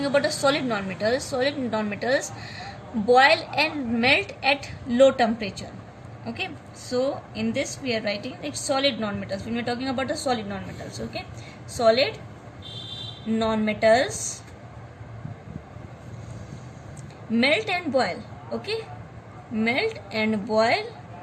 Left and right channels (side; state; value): both; identical; correlation 1.00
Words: about a solid non-metals boil and melt at low temperature. Okay, so in this we are writing like solid non-metals when we are talking about the solid non-metals. Okay, solid non-metals melt and boil. Okay, melt and boil